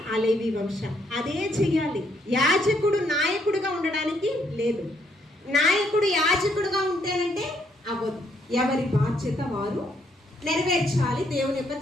ఆ లేవి వంశం. అదే చెయ్యాలి. యాజకుడు నాయకుడుగా ఉండడానికి లేదు. నాయకుడు యాజకుడుగా ఉంటేనంటే అవ్వదు. ఎవరి బాధ్యత వారు నెరవేర్చాలి దేవుని యొక్క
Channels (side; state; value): both; normal; correlation 0.72